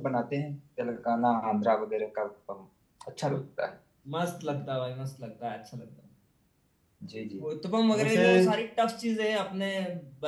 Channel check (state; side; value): identical; both; correlation 1.00